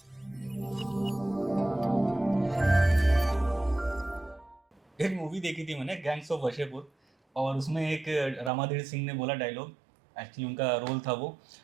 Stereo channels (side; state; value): left; drops out; at 8.5 s